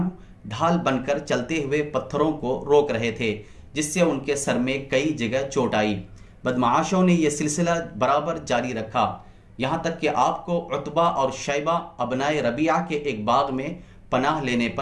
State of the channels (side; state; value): both; identical; correlation 1.00